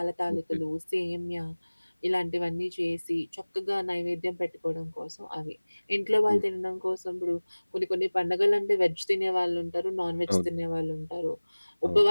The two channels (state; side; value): inverted; both; correlation -1.00